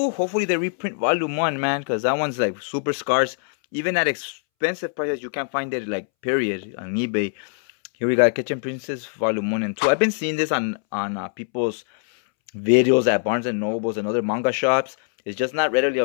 Hopefully they reprint Volume 1, man, because that one's like super scarce. Even at expensive prices, you can't find it, like, period, on eBay. Here we got Kitchen Princess Volume 1 and 2. I've been seeing this on people's videos at Barnes and Nobles and other manga shops. It's just not readily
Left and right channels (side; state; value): right; silent; 64 dB below the other